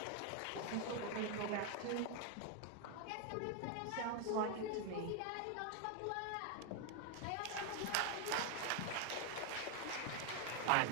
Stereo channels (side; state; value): both; different; correlation 0.01